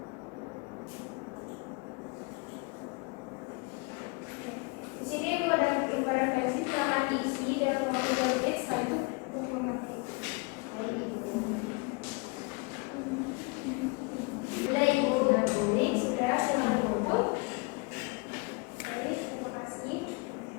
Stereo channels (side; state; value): right; quieter; 29.8 dB